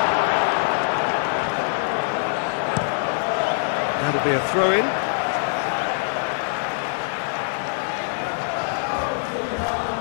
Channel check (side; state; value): right; silent; digital silence